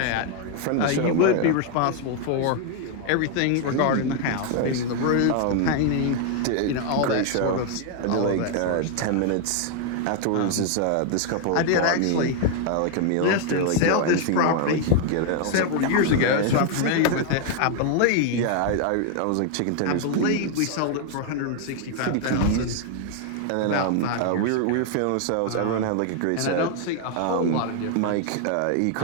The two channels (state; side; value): different; both; correlation 0.00